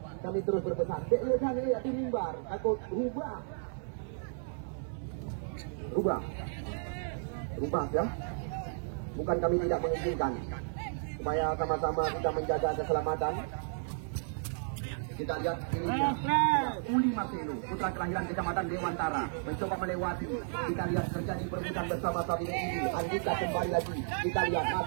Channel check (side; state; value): left; silent; 56 dB below the other